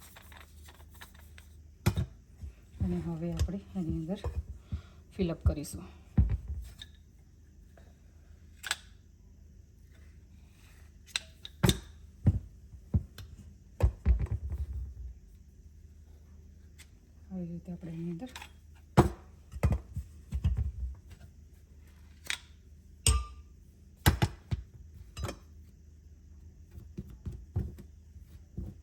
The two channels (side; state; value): both; identical; correlation 1.00